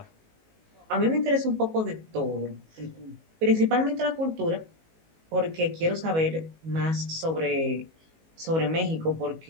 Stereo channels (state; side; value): late; left; 19 ms